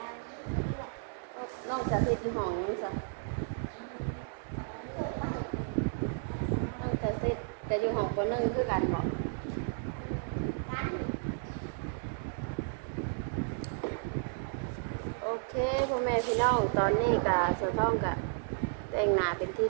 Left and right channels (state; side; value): silent; left; digital silence